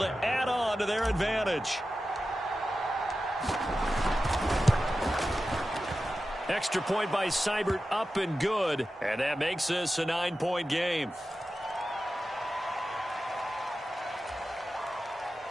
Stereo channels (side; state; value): both; normal; correlation 0.93